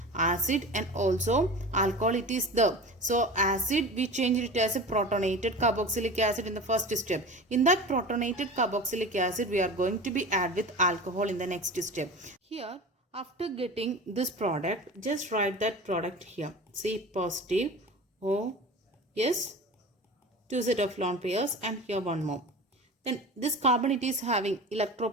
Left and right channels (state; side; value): normal; both; correlation 0.34